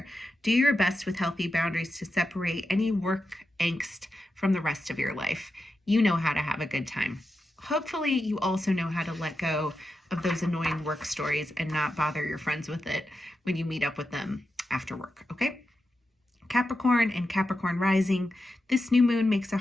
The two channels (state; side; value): normal; both; correlation 0.89